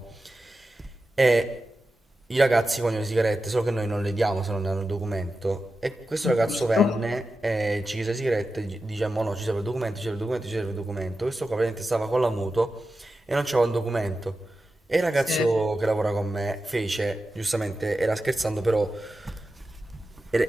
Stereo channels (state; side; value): normal; both; correlation 0.92